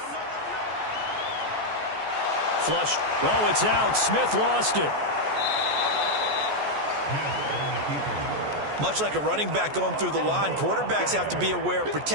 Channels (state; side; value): late; left; 14 ms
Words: Flushed. Oh, it's out. Smith lost it. Much like a running back going through the line, quarterbacks have to be aware of